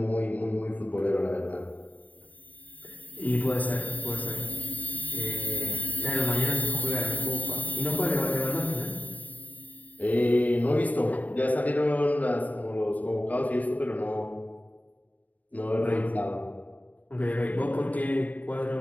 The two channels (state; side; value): late; right; 0.075 ms